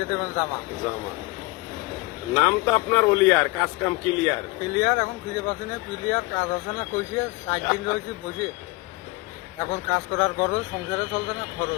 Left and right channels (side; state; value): right; quieter; 23.8 dB